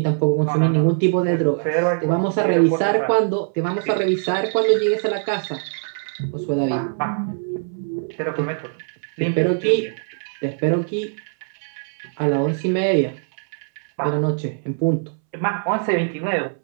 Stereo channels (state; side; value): silent; left; 63 dB below the other